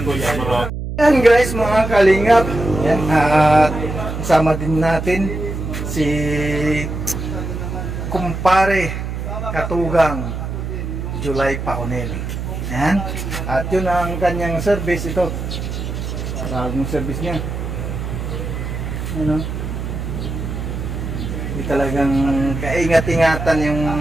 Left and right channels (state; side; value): noise; right; hum, 5 dB below the sound